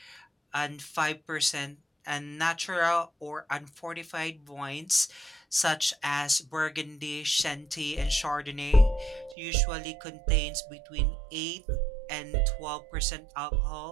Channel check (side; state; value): left; drops out; at 9.3 s